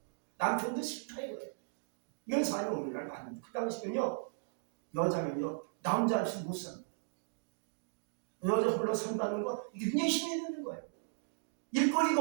남편도 싫다 이거예요. 이런 사람이 오늘날 많습니다. 그 당시는요 여자는요 남자 없이 못 삽니다. 여자 홀로 산다는 거 이게 굉장히 힘이 드는 거예요.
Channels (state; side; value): silent; left; digital silence